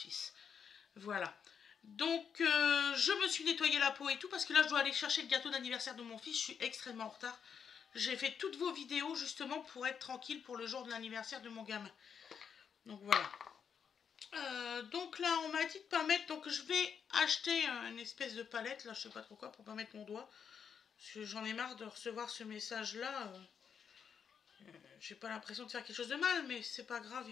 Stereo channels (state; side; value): quieter; right; 7.1 dB